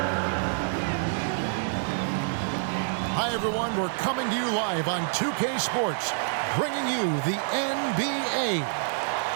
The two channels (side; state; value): left; silent; digital silence